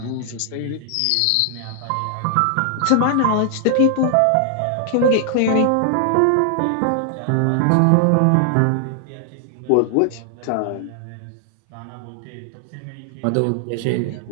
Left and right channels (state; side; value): different; both; correlation 0.00